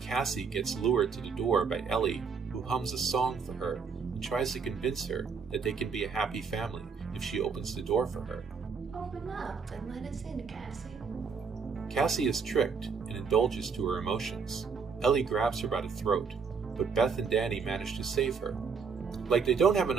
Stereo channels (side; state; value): left; quieter; 5.7 dB